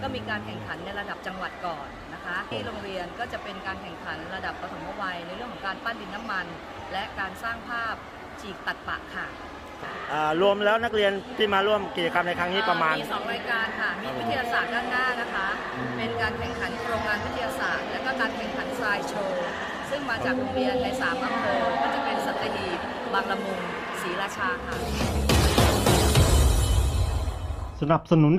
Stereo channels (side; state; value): both; identical; correlation 1.00